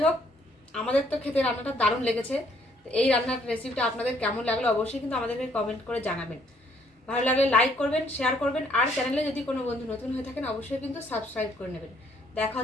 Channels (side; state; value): both; normal; correlation 0.66